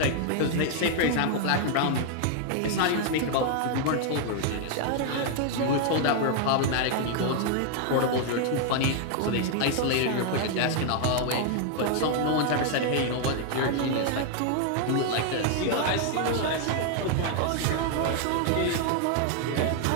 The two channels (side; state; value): both; different; correlation 0.00